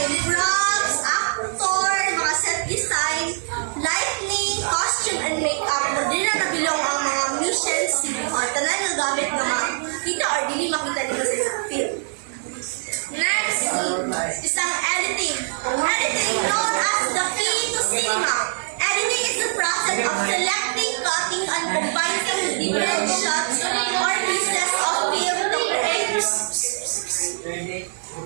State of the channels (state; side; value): silent; left; 59 dB below the other